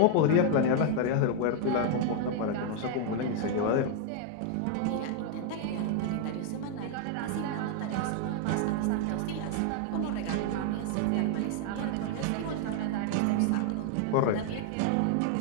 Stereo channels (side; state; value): both; different; correlation 0.00